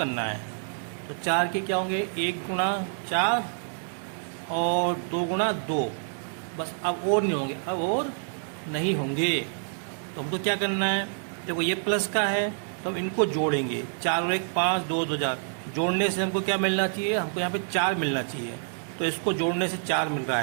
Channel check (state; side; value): silent; left; 60 dB below the other